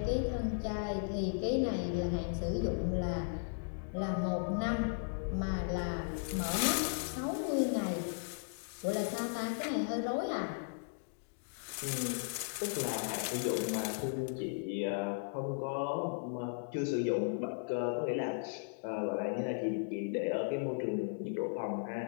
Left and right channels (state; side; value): silent; right; digital silence